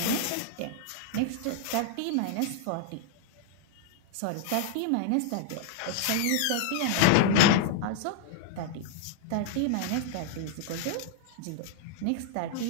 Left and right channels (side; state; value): both; different; correlation -0.01